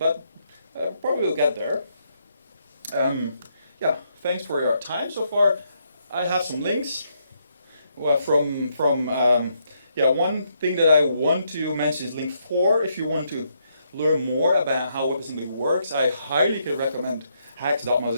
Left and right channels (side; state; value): both; inverted; correlation -0.76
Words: probably we'll get there. Thanks for your time so far. I have some links. One thing that I want to mention is link 4. If you want to learn more about how WebAssembly works, I highly could recommend